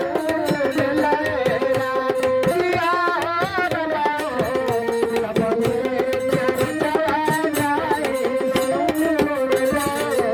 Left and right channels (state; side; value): identical; both; correlation 1.00